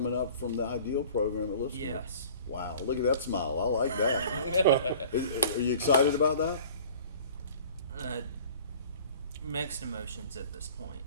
up from the Ideal program at Lipscomb. Yes. Wow! Look at that smile. I like that. Are you excited about that? Mixed emotions at this point.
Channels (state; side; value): inverted; both; correlation -0.47